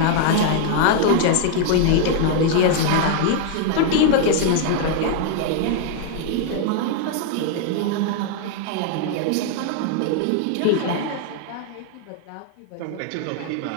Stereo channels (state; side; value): different; both; correlation 0.00